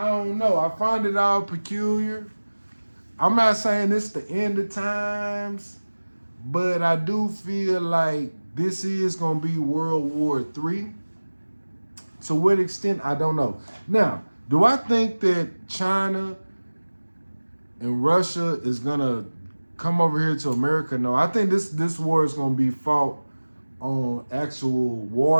don't know. I find it all peculiar. I'm not saying it's the end of times, but I do feel like this is going to be World War III. To what extent, I don't know. Now, do I think that China and Russia is going to come over here to America? No, I think this war is going to be fought on actual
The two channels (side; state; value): both; inverted; correlation -1.00